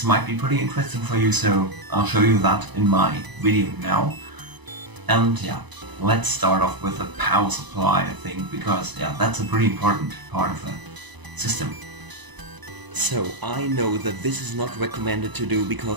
might be pretty interesting for you, so I'll show you that in my video now. And yeah, let's start off with the power supply, I think, because yeah, that's a pretty important part of the system. So I know that this is not recommended to do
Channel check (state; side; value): late; left; 1.0 ms